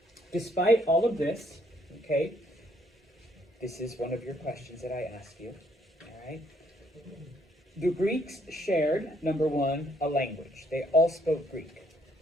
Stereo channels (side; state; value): both; normal; correlation 0.69